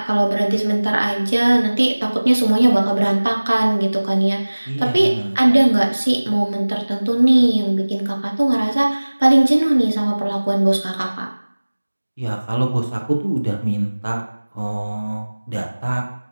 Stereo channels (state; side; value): inverted; both; correlation -1.00